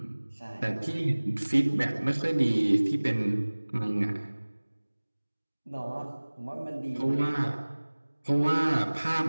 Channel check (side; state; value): both; inverted; correlation -1.00